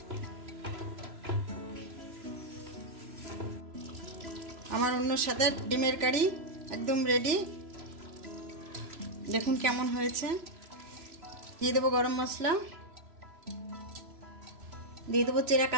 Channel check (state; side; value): late; left; 3.0 ms